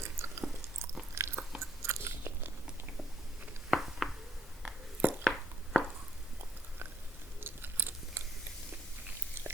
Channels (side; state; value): both; normal; correlation 0.71